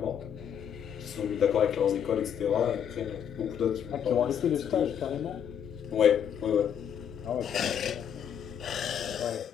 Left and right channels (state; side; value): quieter; right; 8.6 dB